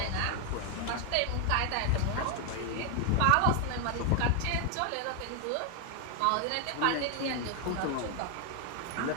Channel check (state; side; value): different; both; correlation 0.00